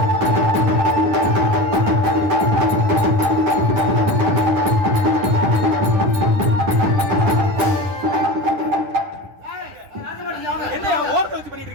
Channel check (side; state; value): left; late; 9.8 ms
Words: என்ன ஓரத்தை வச்சு பண்ணிட்டு